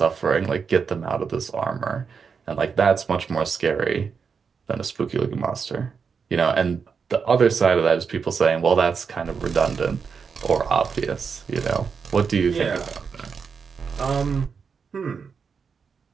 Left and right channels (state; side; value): quieter; left; 5.9 dB